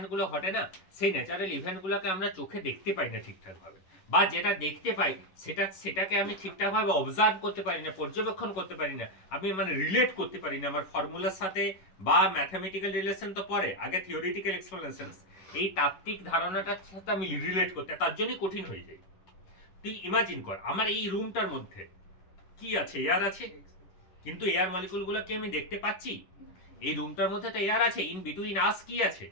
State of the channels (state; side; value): late; right; 11 ms